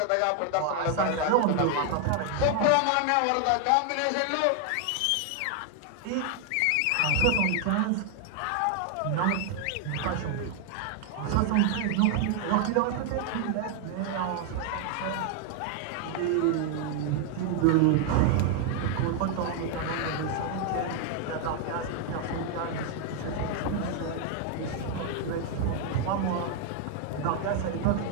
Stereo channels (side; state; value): both; different; correlation 0.00